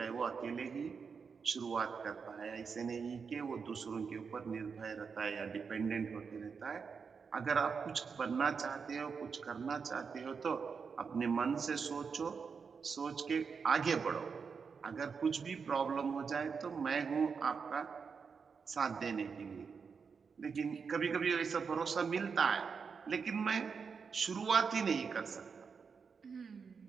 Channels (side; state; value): left; quieter; 5.7 dB